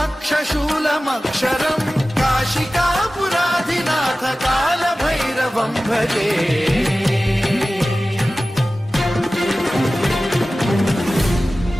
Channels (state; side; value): normal; both; correlation 0.96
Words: काशिकापुराधिनाथ कालभैरवं भजे